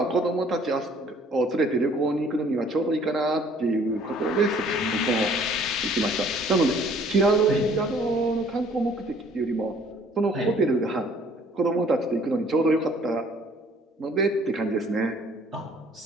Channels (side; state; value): both; normal; correlation 0.57